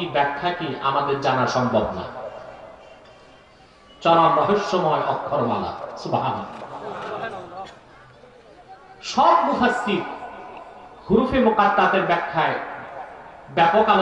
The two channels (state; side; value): identical; both; correlation 1.00